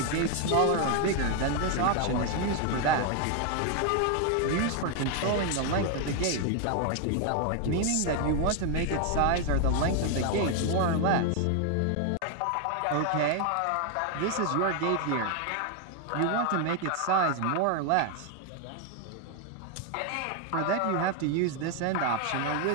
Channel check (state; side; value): different; both; correlation 0.01